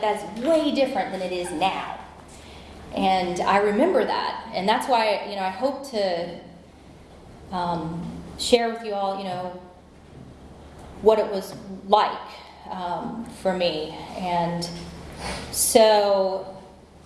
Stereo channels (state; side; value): identical; both; correlation 1.00